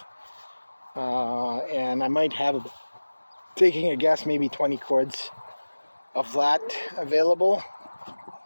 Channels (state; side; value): inverted; both; correlation -1.00